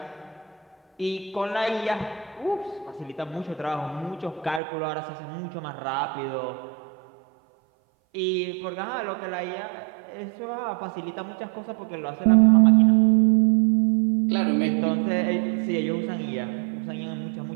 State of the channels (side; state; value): left; drops out; at 4.6 s